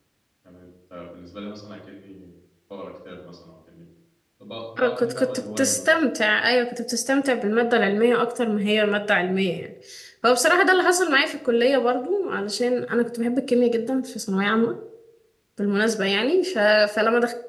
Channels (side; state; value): both; identical; correlation 1.00